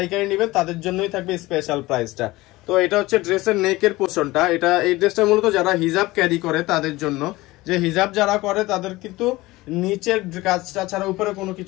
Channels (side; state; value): right; quieter; 19.6 dB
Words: নেবেন তাদের জন্যই থাকবে স্পেশাল প্রাইসটা। তো এটা হচ্ছে ড্রেসের নেকের পোর্শনটা। এই ড্রেসটা মূলত যারা হিজাব ক্যারি করে তাদের জন্য, যে হিজাব যারা করে তাদের কিন্তু নিচের কাজটা ছাড়া উপরে কোনো